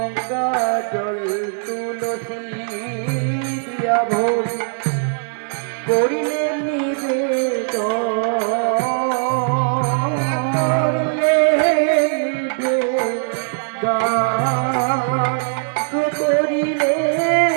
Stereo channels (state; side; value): silent; left; digital silence